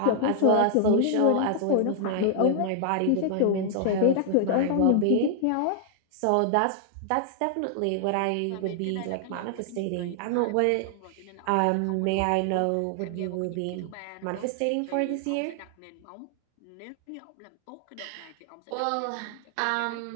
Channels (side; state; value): both; different; correlation 0.00